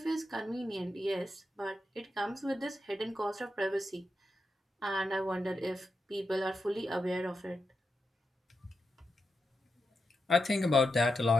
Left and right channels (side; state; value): both; normal; correlation 0.87